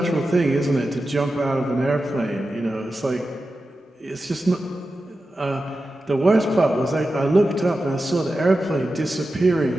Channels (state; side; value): normal; both; correlation 0.92